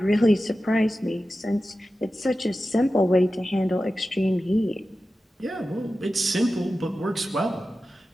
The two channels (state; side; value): normal; both; correlation 0.93